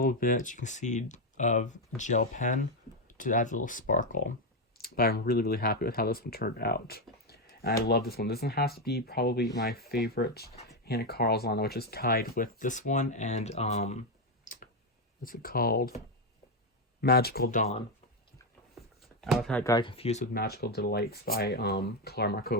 bit, you can see, of gel pen to add a little sparkle. But I'm really, really happy with how this one turned out. And I love this one. This one has to be probably my favorite Hannah Carlson, which is tied with this one and, what's it called? Magical Dawn. I got confused with Magical Delights by Clara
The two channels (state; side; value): normal; both; correlation 0.06